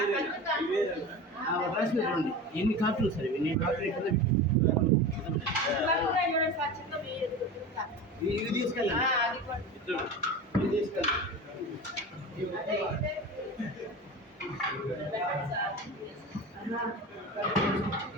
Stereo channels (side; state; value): both; normal; correlation 0.30